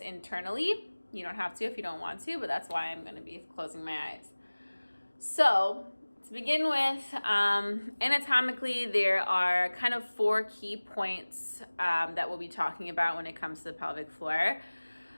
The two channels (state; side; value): inverted; both; correlation -1.00